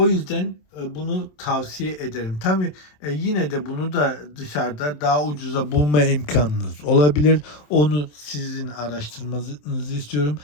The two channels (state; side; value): late; right; 27 ms